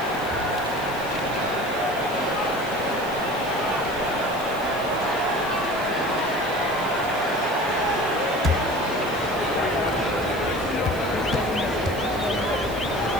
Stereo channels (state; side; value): noise; left; hiss, 18 dB below the sound